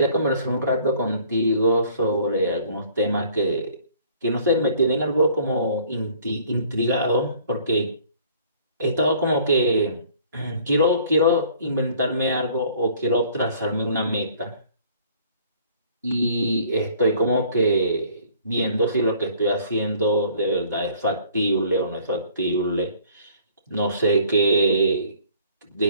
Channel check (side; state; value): both; inverted; correlation -0.55